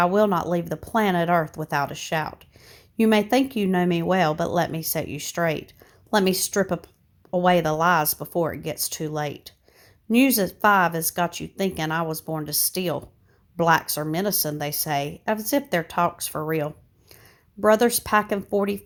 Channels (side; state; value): both; identical; correlation 1.00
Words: will not leave the planet Earth without a shout. You may think you know me well, but let me set you straight. Let me strip away the lies before it gets too late. News at 5 has got you thinking I was born to steal. Blacks are menacing, they say, as if their talk's for real. Brothers packing